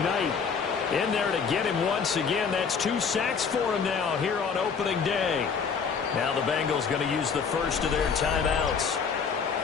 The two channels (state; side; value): quieter; right; 6.0 dB